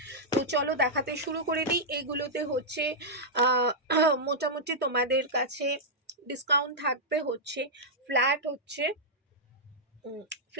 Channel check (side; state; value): both; normal; correlation -0.08